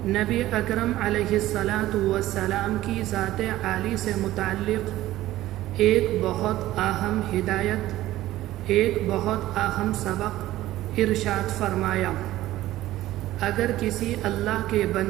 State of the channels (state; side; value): quieter; left; 15.4 dB